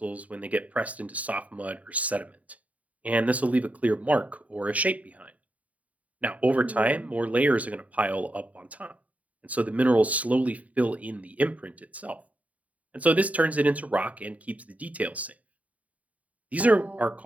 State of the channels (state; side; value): late; left; 0.070 ms